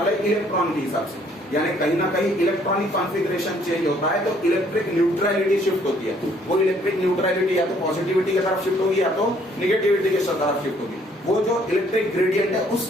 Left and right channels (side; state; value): both; normal; correlation 0.63